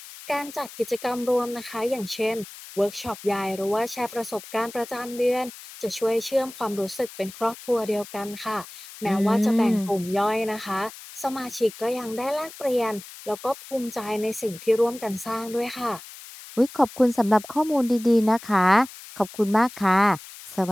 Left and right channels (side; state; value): left; noise; hiss, 16 dB below the sound